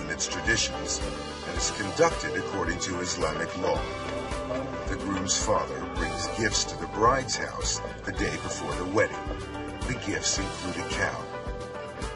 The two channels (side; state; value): both; identical; correlation 1.00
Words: in its traditions and is conducted according to Islamic law. The groom's father brings gifts to the bride's house the day before the wedding. The gifts include a cow.